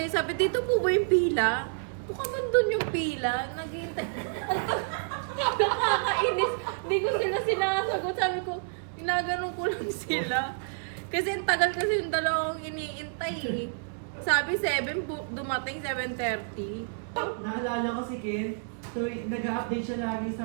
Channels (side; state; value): left; silent; digital silence